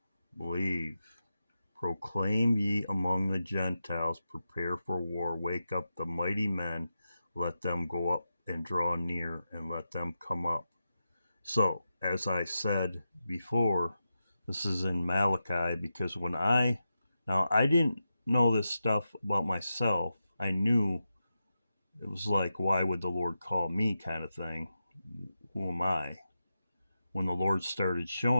Believe. Proclaim ye among the Gentiles. Prepare for war. Wake up the mighty men. Let them go up and draw near, and let them come up. So, as I said before, this is in Malachi, because now I didn't know this stuff about myself. I knew it was like, why would the Lord call me kind of thing? Who am I? When the Lord started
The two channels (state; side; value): inverted; both; correlation -0.90